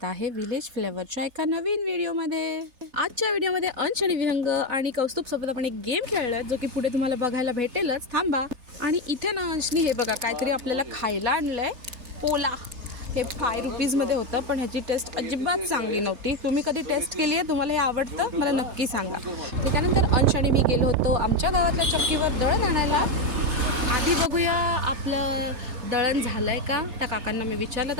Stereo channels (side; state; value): left; late; 3.3 ms